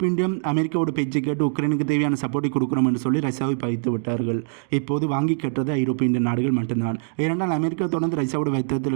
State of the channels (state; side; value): silent; left; digital silence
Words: இந்தியம் அமெரிக்காவோட பேச்சை கேட்டு உக்ரைனுக்கு தேவையான சப்போர்ட்டை கொடுக்குறோம் என்று சொல்லி ரஷ்யாவை பகித்து விட்டார்கள். இப்போது வாங்கி கட்டுறது ஐரோப்பிய இந்திய நாடுகள் மட்டும்தான். ஏனென்றால் அமெரிக்கா தொடர்ந்து ரஷ்யாவோட